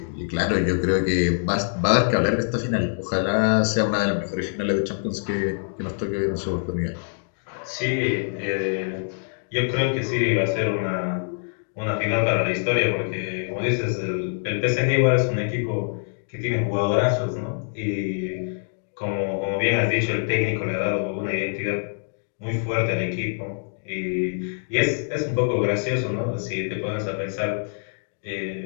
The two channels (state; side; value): silent; right; digital silence